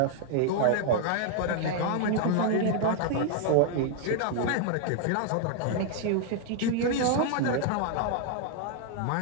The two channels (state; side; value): different; both; correlation 0.00